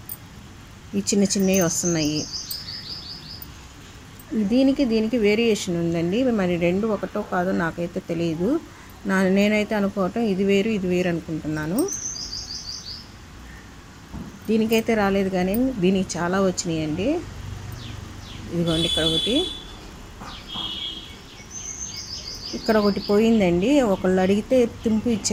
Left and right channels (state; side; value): identical; both; correlation 1.00